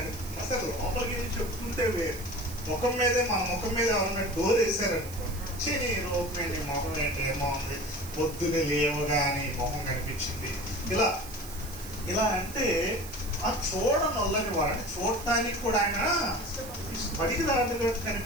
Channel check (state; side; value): noise; right; hiss, 14 dB below the sound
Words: అసలు లోపలికి వెళ్ళి చెప్పుకుంటే వేరు, ముఖం మీదే మన ముఖం మీద ఎవరైనా డోర్ వేసారనుకోండి, నీ లోపం ఏంటి, ముఖం ఏంటి, ఏమో ఉంది, పొద్దున్నే లేవగానే మొహం కనిపించింది, ఇలా ఇలా అంటే ఆ చూడనొల్లని వాడిని చూడటానికి కూడా ఆయన బడికి దాటుగా